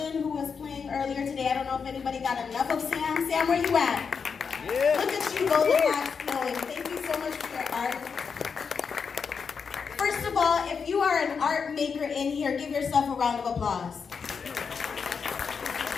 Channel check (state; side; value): quieter; right; 5.9 dB